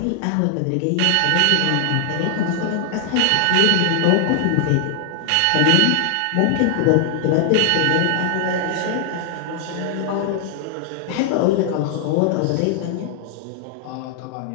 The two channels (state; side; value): different; both; correlation 0.00